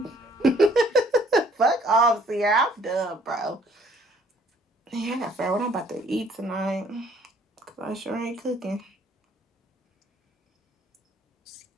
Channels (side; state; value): both; normal; correlation 0.61